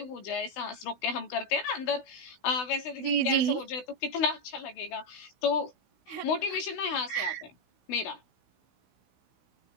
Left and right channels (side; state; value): right; late; 16 ms